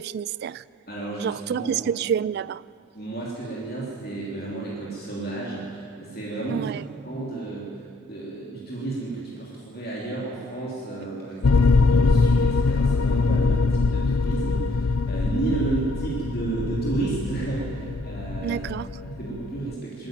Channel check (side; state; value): both; normal; correlation 0.64